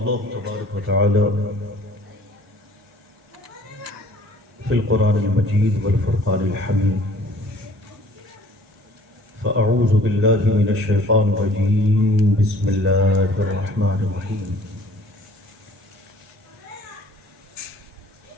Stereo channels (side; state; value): both; normal; correlation 0.53